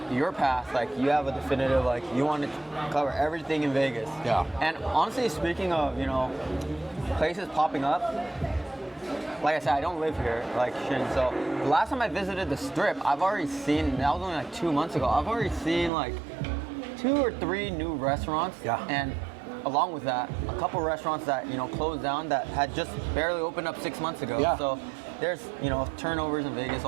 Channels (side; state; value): left; drops out; at 15.9 s